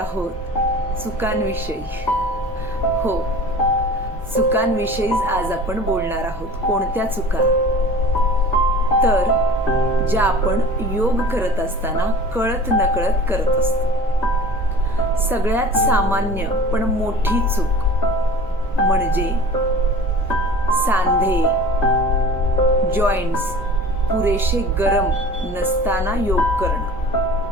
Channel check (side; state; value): both; normal; correlation 0.42